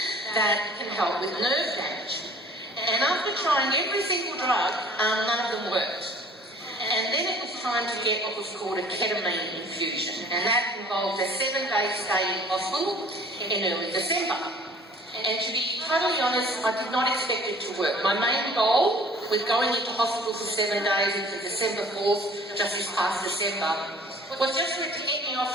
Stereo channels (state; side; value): normal; both; correlation 0.51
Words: that can help with nerve damage. And after trying every single drug, none of them worked. And then it was time to get what was called a ketamine infusion, and that involved a 7-day stay in hospital in early December. And to be totally honest, I did not expect it to work. My main goal with going into hospital for 7 days into December 4th, just this past December, was just for it to get me